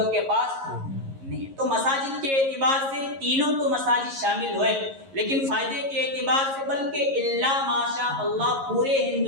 کے پاس نہیں۔ تو مساجد کے اعتبار سے تینوں تو مساجد شامل ہوئے، لیکن فائدے کے اعتبار سے بلکہ الا ماشاء اللہ پورے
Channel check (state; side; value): late; left; 11 ms